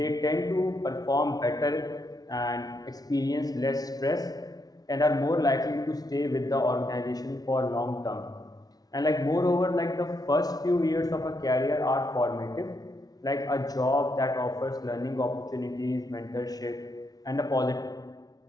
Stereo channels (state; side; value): late; right; 0.19 ms